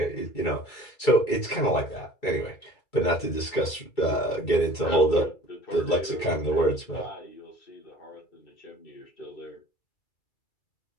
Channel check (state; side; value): late; right; 2.3 ms